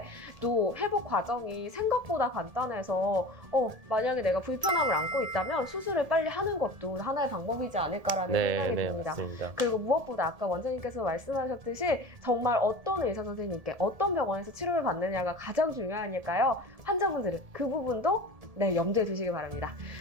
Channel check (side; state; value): left; late; 1.7 ms